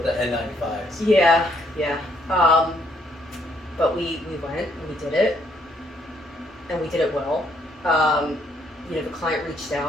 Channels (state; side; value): normal; both; correlation 0.70